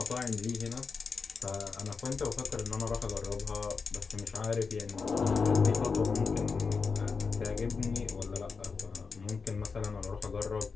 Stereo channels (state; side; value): quieter; right; 5.0 dB